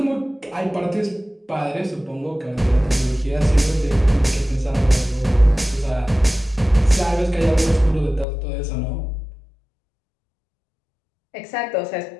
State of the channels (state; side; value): drops out; right; at 8.2 s